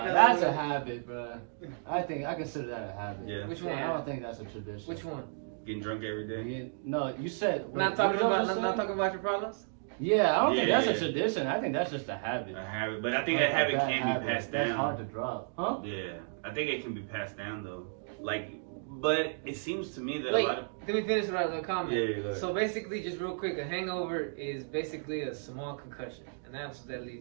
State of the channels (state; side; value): silent; left; digital silence